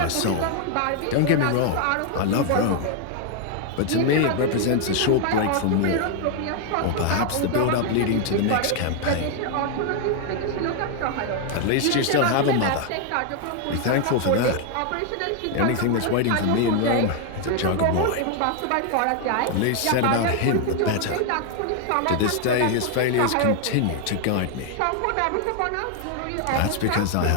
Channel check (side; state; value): both; different; correlation 0.00